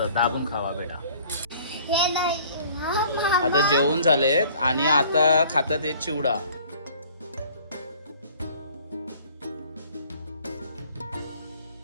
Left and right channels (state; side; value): inverted; both; correlation -0.52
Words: दाबून खावा बेटा. आता जेवण झालेत आणि आता खातात हे चिवडा.